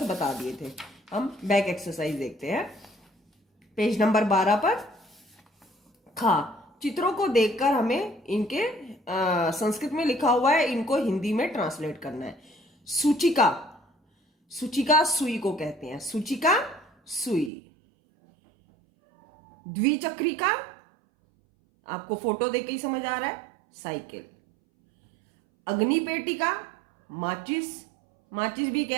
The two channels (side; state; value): left; drops out; at 17.5 s